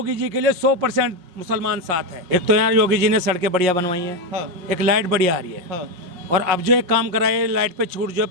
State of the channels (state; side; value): late; left; 5.6 ms